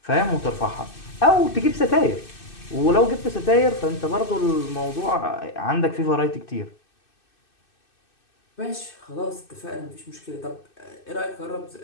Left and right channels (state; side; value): late; right; 2.6 ms